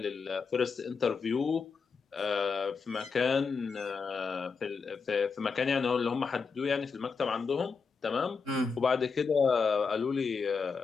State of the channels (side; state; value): right; quieter; 5.1 dB